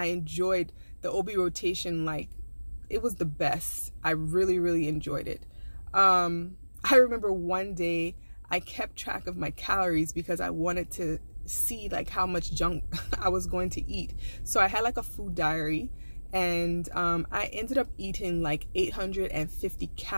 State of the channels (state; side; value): inverted; both; correlation -1.00